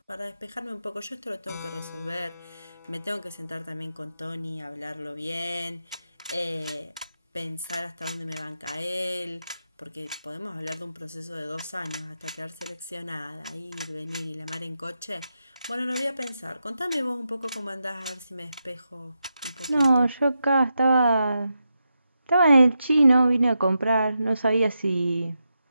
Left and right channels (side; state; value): both; inverted; correlation -0.87